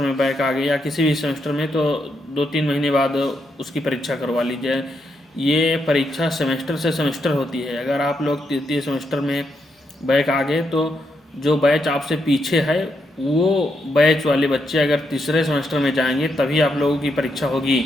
में बैक आ गए या किसी भी सेमेस्टर में तो 2-3 महीने बाद उसकी परीक्षा करवा लीजिए। ये परीक्षा सेमेस्टर से सेमेस्टर होती है। अगर आप लोग तृतीय सेमेस्टर में बैक आ गए तो जो बैच आपसे पीछे है वो बैच वाले बच्चे अगर तीसरे सेमेस्टर में जाएंगे तभी आप लोगों की परीक्षा होगी।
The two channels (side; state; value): both; normal; correlation 0.81